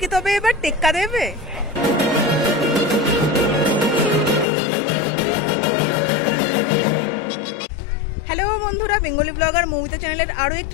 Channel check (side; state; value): right; drops out; at 4.5 s